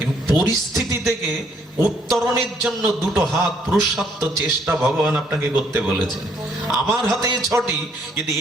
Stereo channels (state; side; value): normal; both; correlation 0.67